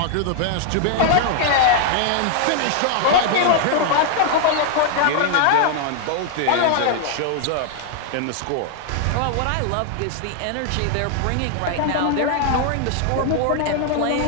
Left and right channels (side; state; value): both; different; correlation 0.00